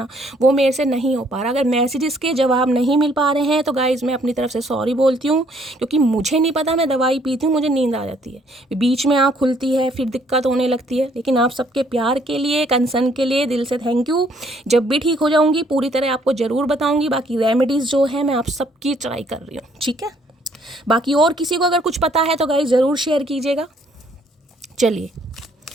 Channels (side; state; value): both; normal; correlation 0.65